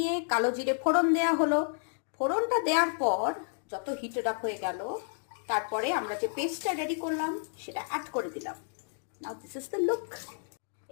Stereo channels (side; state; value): right; silent; digital silence